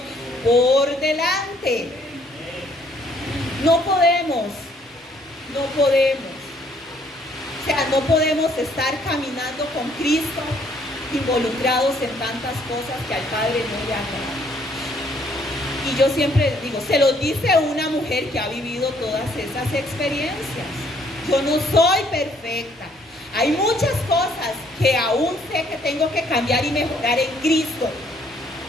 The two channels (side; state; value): both; normal; correlation 0.65